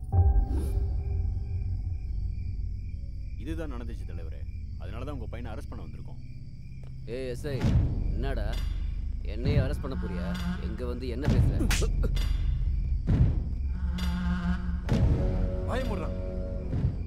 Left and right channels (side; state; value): both; identical; correlation 1.00